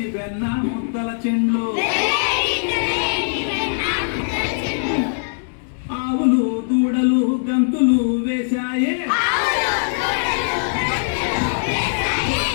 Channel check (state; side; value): silent; right; digital silence